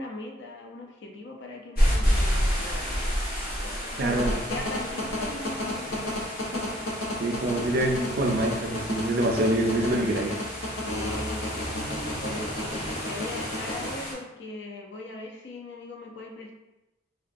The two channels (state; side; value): normal; both; correlation 0.58